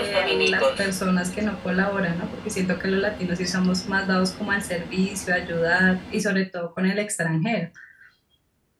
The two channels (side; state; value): both; identical; correlation 1.00